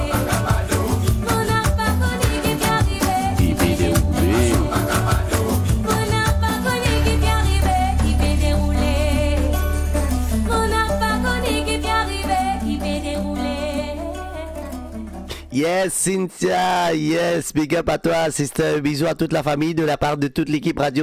on n'a pas connu qui t'est arrivé. Qui fait dérouler. On n'a pas connu qui t'est arrivé, qui peut dérouler. On n'a pas connu qui t'est arrivé, qui peut dérouler. Yes, Cynthia, yes, big up à toi, sister. Bisous à toute la famille de la part de toute l'équipe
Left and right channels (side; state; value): both; identical; correlation 1.00